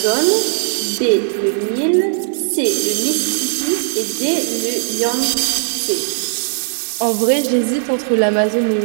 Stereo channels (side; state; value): left; silent; digital silence